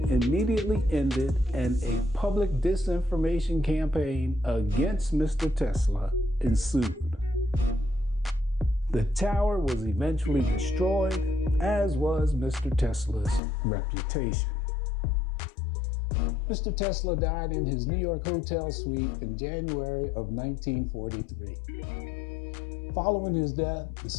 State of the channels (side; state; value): right; drops out; at 13.4 s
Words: immediately ended and a public disinformation campaign against Mr. Tesla ensued. The tower was eventually destroyed, as was Mr. Tesla's reputation. Mr. Tesla died in his New York hotel suite in January of 1943. Following his death, the